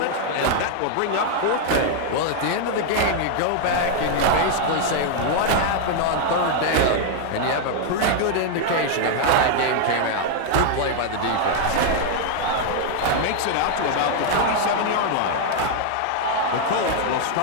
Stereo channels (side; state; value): both; different; correlation 0.00